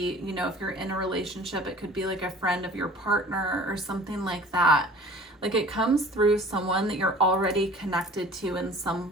you know, if you're in a relationship, it could be like a friend of your partner or something like that. Like it comes through someone that you're already connected to in some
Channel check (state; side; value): normal; both; correlation 0.46